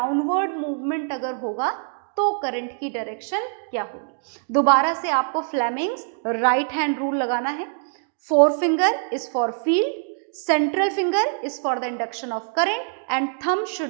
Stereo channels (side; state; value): left; silent; digital silence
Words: मूवमेंट अगर होगा तो करंट की डायरेक्शन क्या होगी. दोबारा से आपको फ्लेमिंग्स राइट हैंड रूल लगाना है. Four finger is for field, central finger is for the induction of current and thumb